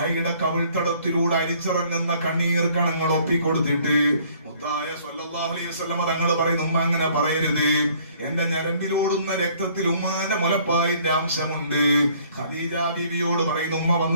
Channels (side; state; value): both; inverted; correlation -0.59